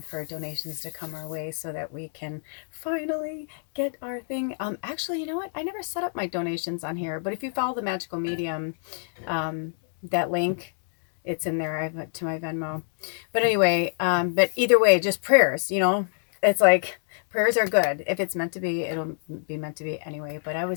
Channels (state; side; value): silent; right; digital silence